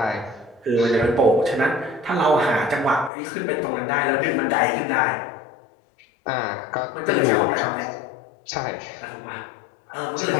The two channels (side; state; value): right; drops out; at 3.1 s